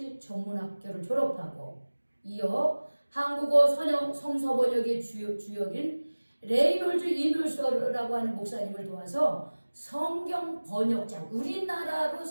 전문학교를 졸업하고 이어 한국어 성서 번역의 주역인 레이놀즈 이누서라고 하는 목사님을 도와서 성경 번역자, 우리나라로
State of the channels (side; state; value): both; inverted; correlation -1.00